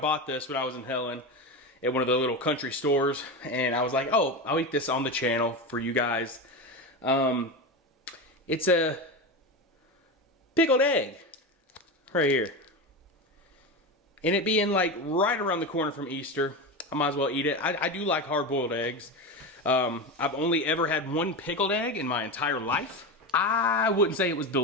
this when I was in Helen at one of the little country stores, and I was like, oh, I'll eat this on the channel for you guys. It's a pickled egg right here. And it being like right around the corner from Easter, I might as well eat it. I do like hard-boiled eggs. I've only ever had one pickled egg in my entire life. I wouldn't say it was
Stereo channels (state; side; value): normal; both; correlation 0.20